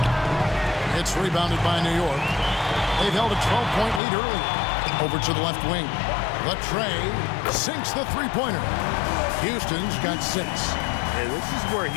It's rebounded by New York. They've held a 12-point lead early. Over to the left wing. Latrey sinks the three-pointer. Houston's got 6. And this is where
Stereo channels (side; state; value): right; drops out; at 4.0 s